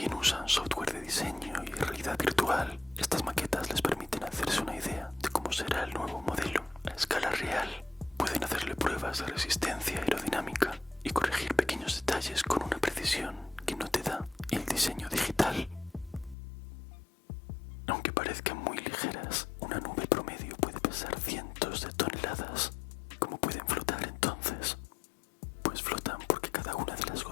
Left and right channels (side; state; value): right; drops out; at 16.4 s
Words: usan software de diseño y realidad virtual, estas maquetas les permiten hacerse una idea de cómo será el nuevo modelo a escala real. Pueden hacerle pruebas de resistencia aerodinámica y corregir pequeños detalles con una precisión que no te da el diseño digital. Aunque parezcan muy ligeras, una nube promedio puede pesar cientos de toneladas. ¿Cómo pueden flotar entonces? Pues flotan porque cada una de las